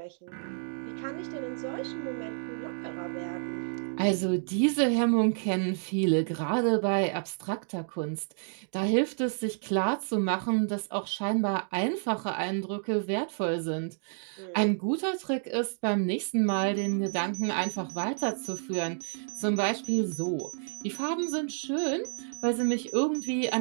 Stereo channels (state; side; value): silent; left; digital silence